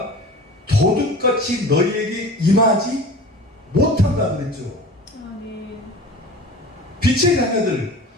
도둑같이 너희에게 임하지 못한다 그랬죠. 아멘. 빛의 자녀들,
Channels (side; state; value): both; normal; correlation 0.38